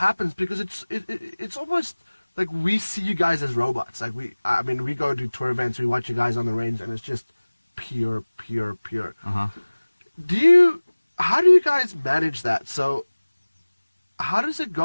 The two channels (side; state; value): both; inverted; correlation -1.00